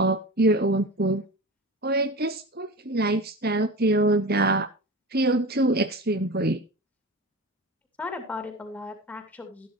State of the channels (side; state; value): both; normal; correlation 0.31